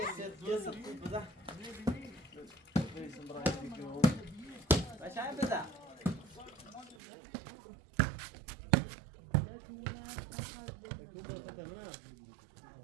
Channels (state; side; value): drops out; left; at 7.0 s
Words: بدا ماشي بدا